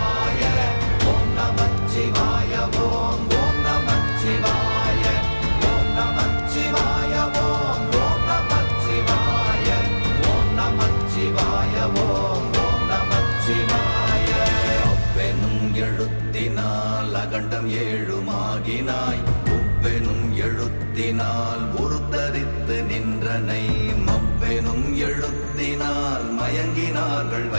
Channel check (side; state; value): both; inverted; correlation -1.00